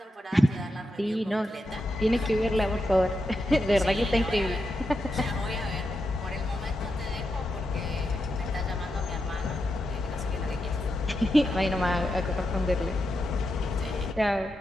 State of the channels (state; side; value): normal; both; correlation 0.86